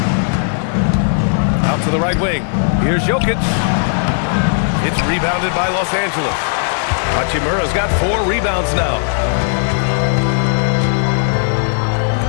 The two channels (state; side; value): silent; right; digital silence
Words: Out to the right wing. Here's Jokic. It's rebounded by Los Angeles. Hachimura's got 4 rebounds now.